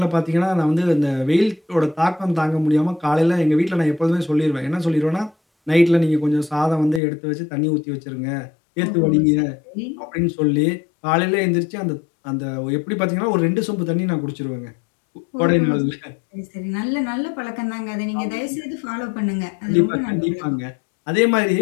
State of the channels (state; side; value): drops out; right; at 7.0 s